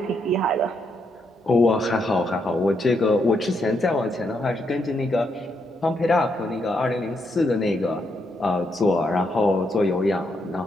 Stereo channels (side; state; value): both; normal; correlation 0.79